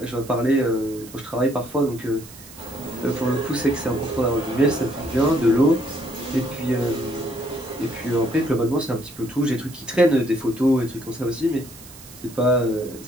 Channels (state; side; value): noise; right; hiss, 19 dB below the sound